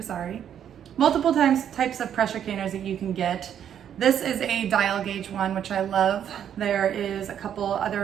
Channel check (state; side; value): quieter; left; 9.3 dB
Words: Multiple types of pressure canners that you can get. This is a dial gauge one, which I love. There is a couple